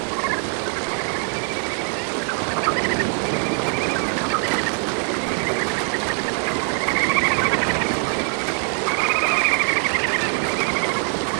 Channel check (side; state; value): left; quieter; 38.5 dB